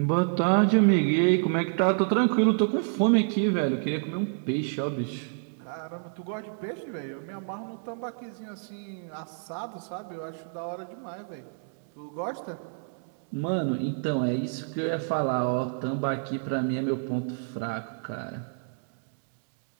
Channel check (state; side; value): silent; left; digital silence